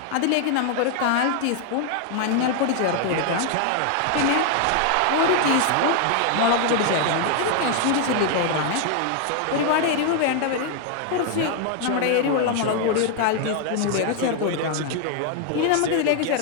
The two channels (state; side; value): different; both; correlation 0.00